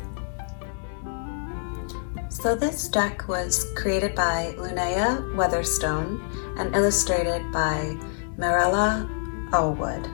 So this deck was created by Linnea Weatherstone and illustrated by Mirella Allwood.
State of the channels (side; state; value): right; silent; 61 dB below the other